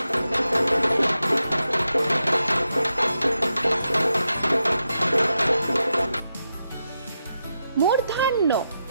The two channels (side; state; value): both; inverted; correlation -0.87